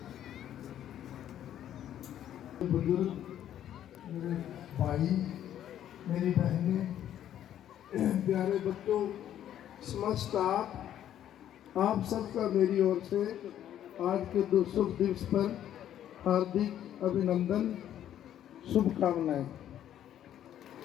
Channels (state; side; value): quieter; right; 11.0 dB